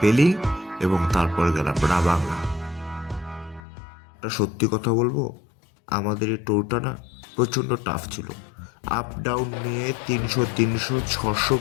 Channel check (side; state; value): right; drops out; at 3.6 s